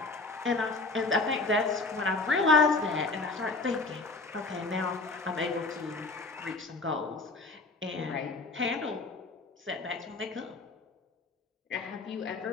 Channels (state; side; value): quieter; right; 3.6 dB